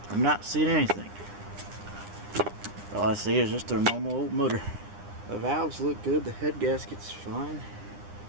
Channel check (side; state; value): left; late; 9.9 ms